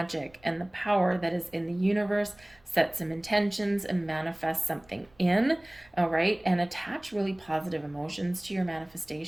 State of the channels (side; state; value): right; noise; rumble, 29 dB below the sound